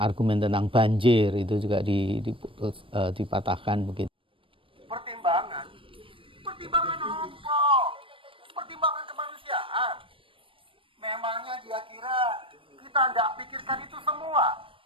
tentang banjir itu juga dipatahkan begitu. Pertimbangan apa? Pertimbangan kemanusiaan. Memangnya dia kira kita tidak pikirkan itu semua?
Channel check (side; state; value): left; late; 0.25 ms